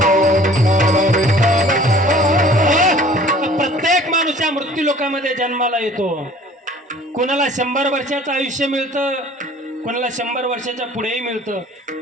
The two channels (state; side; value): normal; both; correlation 0.50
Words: प्रत्येक माणूस या मृत्यू लोकांमध्ये जन्माला येतो. कोणाला 100 वर्षाचं आयुष्य मिळतं, कोणाला 100 वर्षाच्या पुढेही मिळतं,